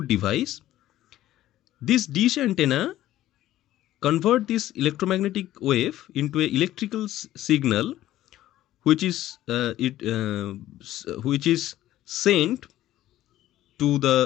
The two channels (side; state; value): right; quieter; 14.0 dB